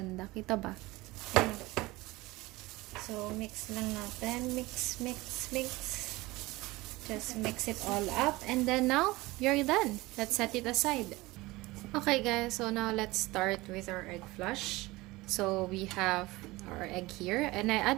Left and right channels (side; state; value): left; quieter; 20.6 dB